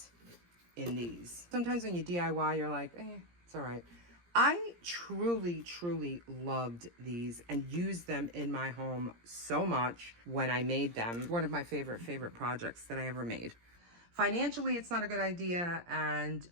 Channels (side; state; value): left; late; 17 ms